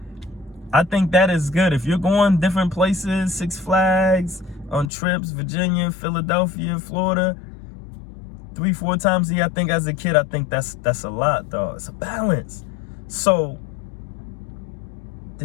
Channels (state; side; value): drops out; right; at 4.9 s